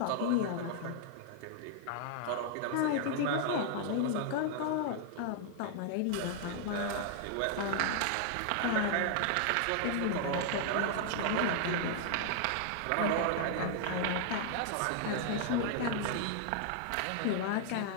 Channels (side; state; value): both; different; correlation 0.00